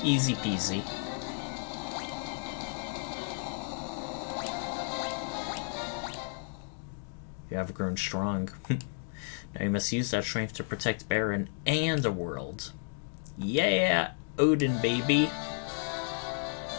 Easy peasy. You have grown strong. Now you must use that strength to protect Baron and the world. Yeah, Odin, baby.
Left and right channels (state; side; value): silent; right; 56 dB below the other